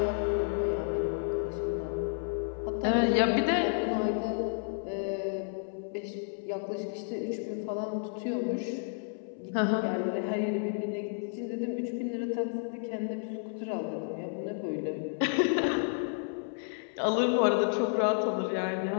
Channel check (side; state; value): right; silent; 57 dB below the other